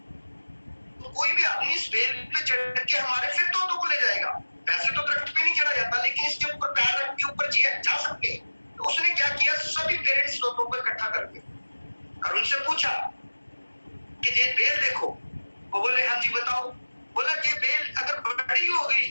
तो कोई भी आदमी इस बेल पे चढ़ के हमारे फिर तोतों को ले जाएगा। वैसे तो दरख्त पे नहीं चढ़ा जाता, लेकिन इसके ऊपर पैर रख के ऊपर जा सकते हैं। तो उसने क्या किया, सभी पेरेंट्स तोतों को इकट्ठा कर दिया और उनसे पूछा कि ये बेल देखो। वो बोले हाँ जी बताओ। बोला ये बेल अगर बड़ी हो गई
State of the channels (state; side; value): inverted; both; correlation -1.00